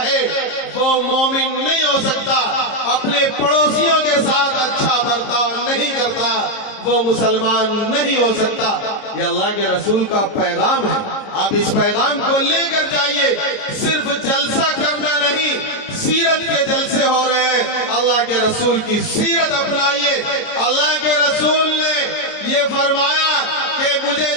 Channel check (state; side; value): late; right; 30 ms